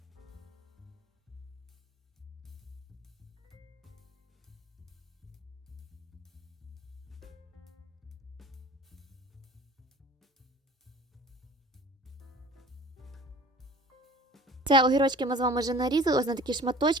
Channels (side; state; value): both; normal; correlation 0.45